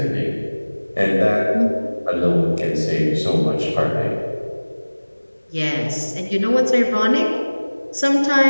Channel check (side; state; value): both; inverted; correlation -1.00